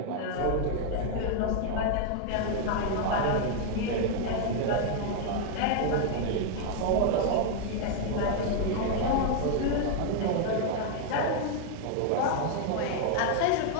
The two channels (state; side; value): different; both; correlation 0.00